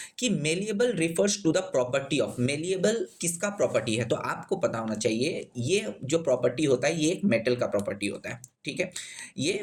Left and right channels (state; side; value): identical; both; correlation 1.00